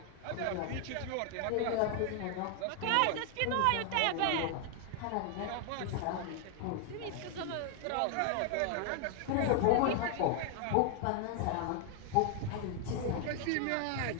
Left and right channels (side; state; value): both; different; correlation 0.00